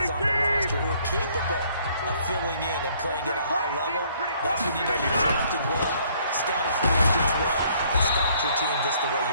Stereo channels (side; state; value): both; inverted; correlation -0.63